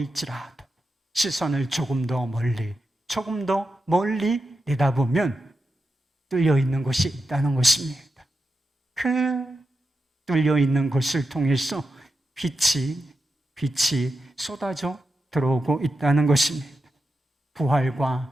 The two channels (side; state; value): both; normal; correlation 0.88